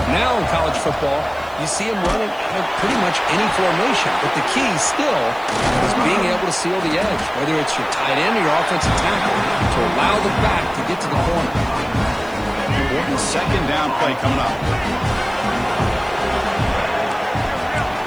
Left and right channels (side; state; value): right; noise; hiss, 27 dB below the sound